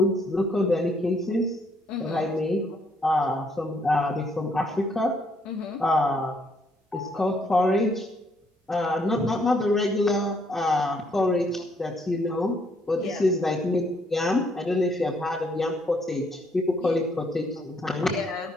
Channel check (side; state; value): both; normal; correlation 0.70